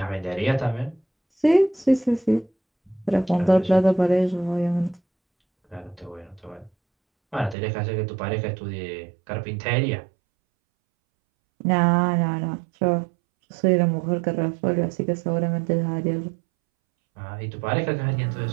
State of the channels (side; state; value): left; drops out; at 7.6 s